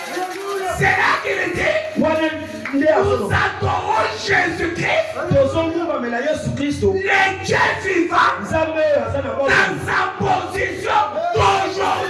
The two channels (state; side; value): identical; both; correlation 1.00